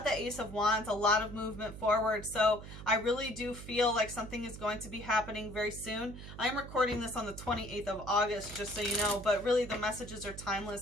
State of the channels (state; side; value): noise; right; hum, 12 dB below the sound